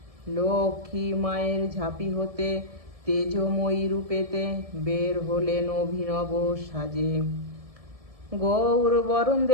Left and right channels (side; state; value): left; late; 1.7 ms